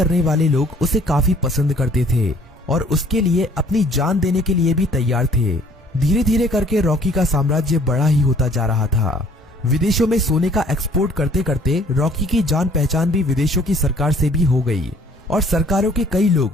वाले लोग उसे काफी पसंद करते थे और उसके लिए अपनी जान देने के लिए भी तैयार थे। धीरे धीरे करके रॉकी का साम्राज्य बड़ा ही होता जा रहा था। विदेशों में सोने का एक्सपोर्ट करते करते रॉकी की जान पहचान भी विदेशों की सरकार से भी हो गई और सरकारों के कई लोग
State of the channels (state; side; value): normal; both; correlation 0.56